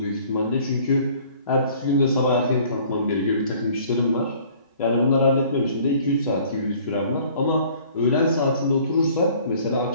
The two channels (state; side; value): inverted; both; correlation -0.54